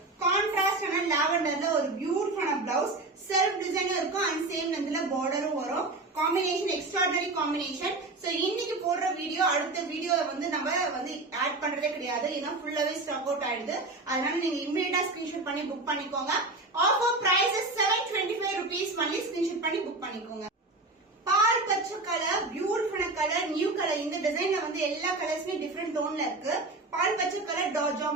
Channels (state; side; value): quieter; left; 3.1 dB